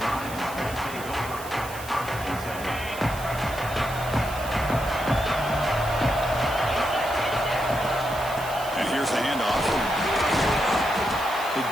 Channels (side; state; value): right; noise; hiss, 14 dB below the sound